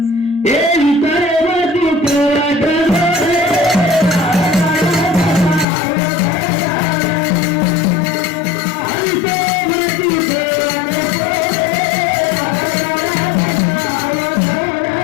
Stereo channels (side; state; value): right; drops out; at 5.7 s